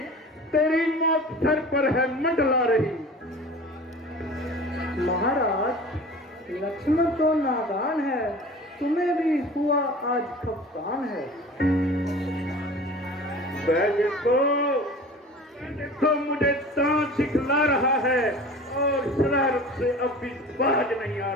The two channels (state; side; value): normal; both; correlation 0.40